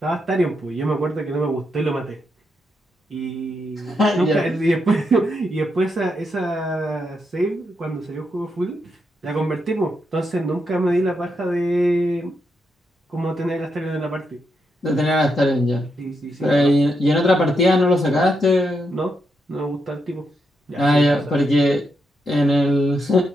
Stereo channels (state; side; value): normal; both; correlation 0.82